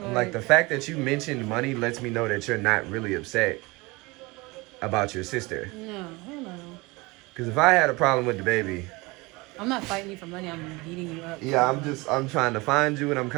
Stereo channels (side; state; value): left; quieter; 23.9 dB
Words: I'm like, the fact that you mentioned money lets me know that you're not really upset about your sister. No, hell no. Because if I had a problem with the baby, I'm not fighting you for money. I'm beating you up. yeah, I'm trying to find you and I'm